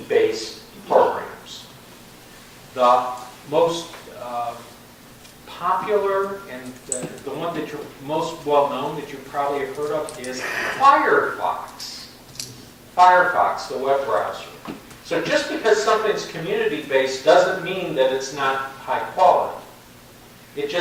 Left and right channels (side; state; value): both; identical; correlation 1.00